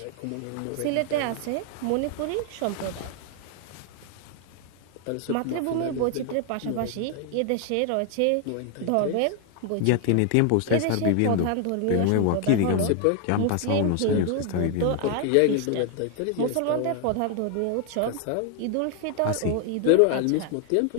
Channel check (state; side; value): different; both; correlation 0.00